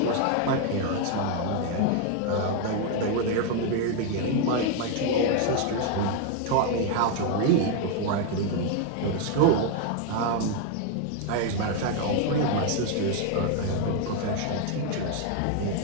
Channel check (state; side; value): different; both; correlation 0.01